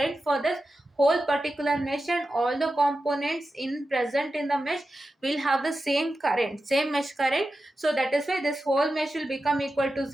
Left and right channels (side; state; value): both; normal; correlation 0.92